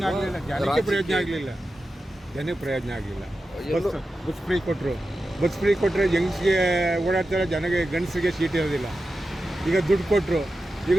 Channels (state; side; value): normal; both; correlation 0.92